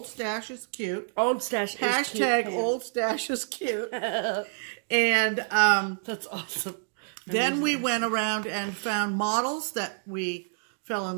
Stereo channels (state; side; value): silent; left; digital silence